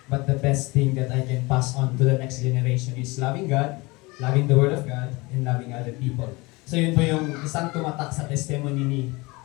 but the best thing that I can pass on to the next generation is loving God, loving the Word of God, and loving other people. So yun po yung isang tumatak sa testimony ni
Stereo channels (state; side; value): quieter; right; 24.1 dB